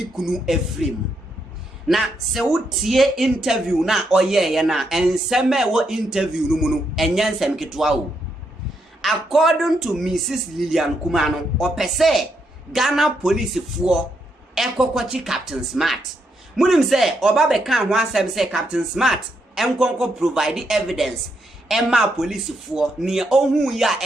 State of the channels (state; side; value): normal; both; correlation 0.79